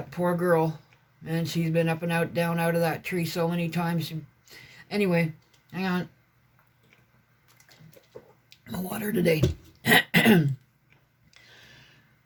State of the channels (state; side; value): identical; both; correlation 1.00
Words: poor girl, and she's been up and out, down out of that tree so many times. Anyway, hang on. My water today.